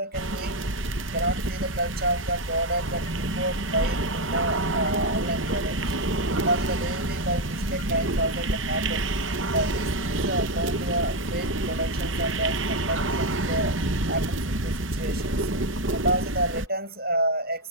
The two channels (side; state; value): both; normal; correlation 0.06